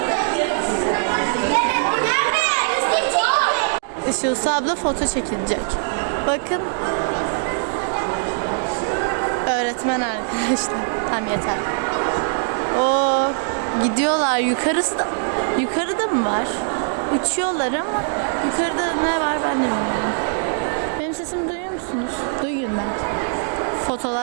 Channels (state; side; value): silent; left; digital silence